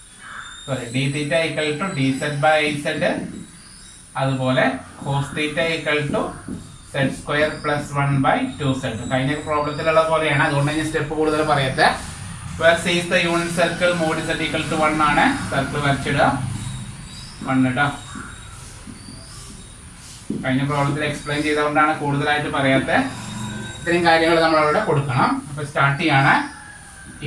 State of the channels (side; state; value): both; identical; correlation 1.00